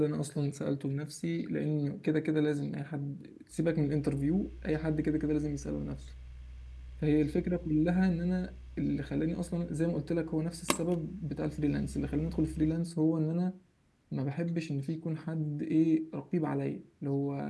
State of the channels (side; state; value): both; identical; correlation 1.00